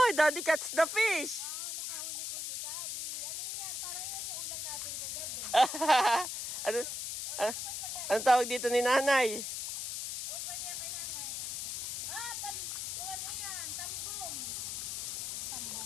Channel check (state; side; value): noise; left; hiss, 4 dB below the sound